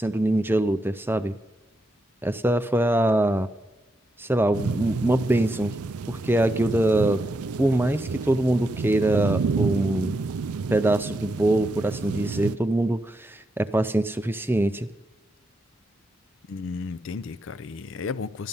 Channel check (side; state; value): both; normal; correlation 0.83